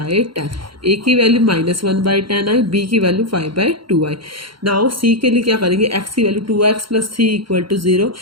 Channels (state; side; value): late; left; 0.73 ms